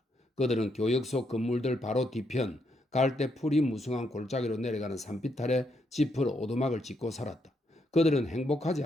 그들은 교역 속 건물들 바로 뒤편 갈대 풀이 무성한 골짜기로 내려가는 산비탈에 지프로 오두막을 짓고 살았다. 그들은 행복하지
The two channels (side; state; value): both; normal; correlation 0.77